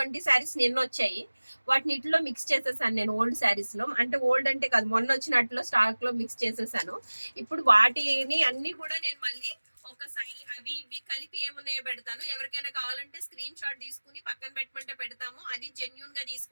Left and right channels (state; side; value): inverted; both; correlation -1.00